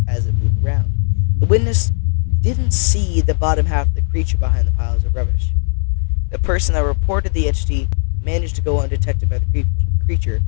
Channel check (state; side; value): silent; right; digital silence